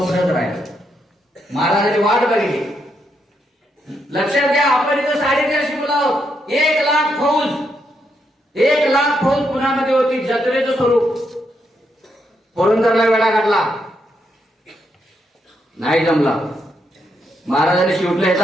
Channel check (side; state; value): both; normal; correlation 0.79